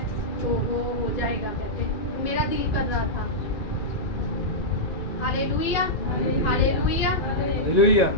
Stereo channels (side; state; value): right; late; 2.4 ms